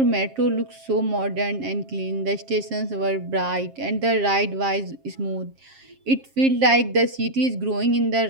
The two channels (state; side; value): late; left; 7.5 ms